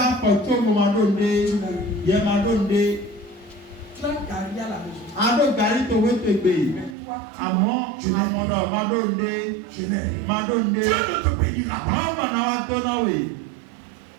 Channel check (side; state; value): left; drops out; at 7.0 s